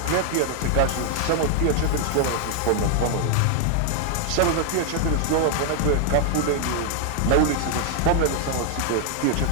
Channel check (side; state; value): both; different; correlation 0.00